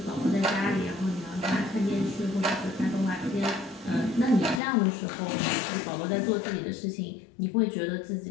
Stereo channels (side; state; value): right; drops out; at 4.6 s